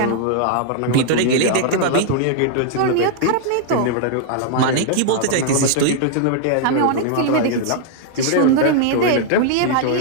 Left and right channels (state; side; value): different; both; correlation -0.01